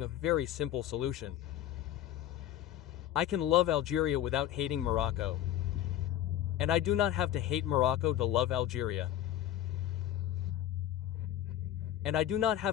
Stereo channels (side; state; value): right; quieter; 12.1 dB